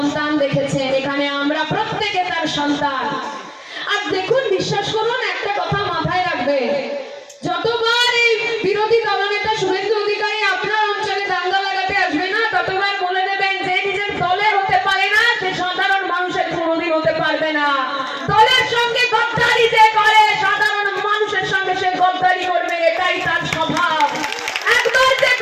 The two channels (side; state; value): both; identical; correlation 1.00